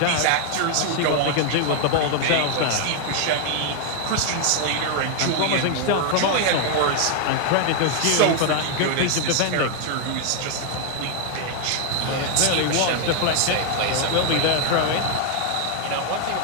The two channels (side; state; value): both; different; correlation 0.00